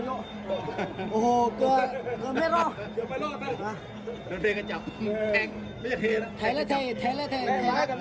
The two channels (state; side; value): identical; both; correlation 1.00